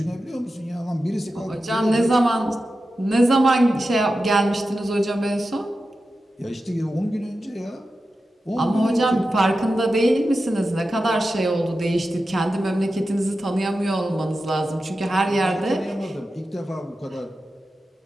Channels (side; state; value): both; normal; correlation 0.92